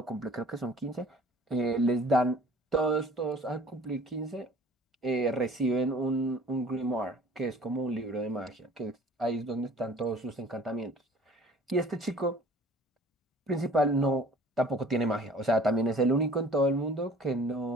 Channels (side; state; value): both; normal; correlation 0.49